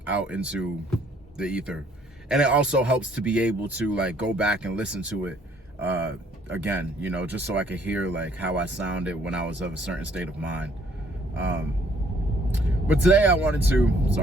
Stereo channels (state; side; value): normal; both; correlation 0.63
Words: out into the ether. And it also helps to be able to like go back and listen to it again, just so I could hear like how I sounded when I was of a certain state of mind. But today I wanted to,